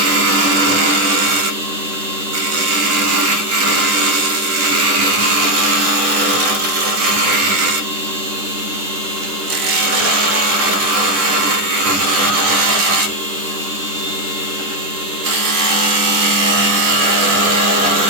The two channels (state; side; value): late; left; 10 ms